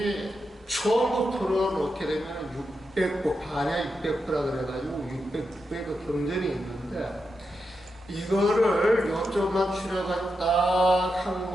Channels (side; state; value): both; normal; correlation 0.87